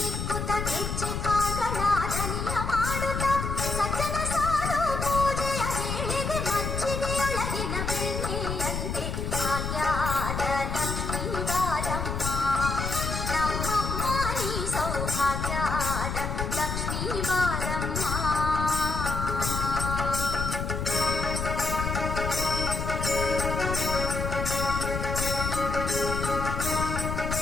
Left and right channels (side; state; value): left; noise; rumble, 3 dB below the sound